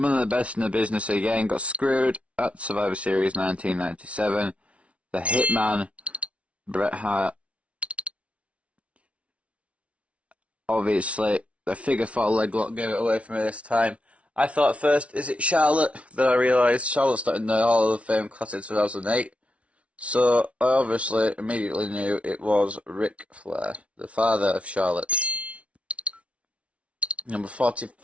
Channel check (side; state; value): left; late; 0.063 ms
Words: the best in the business again got screwed at Survivor Series 1997. The Hitman, Bret Hart. Obviously, the figure 4 leg lock gave it away for me this time. I thought at first, is it Charlotte? Then I realised Charlotte's not in the Hall of Fame Classic 2008. So I obviously immediately knew it was Ric Flair, the father of Charlotte. Number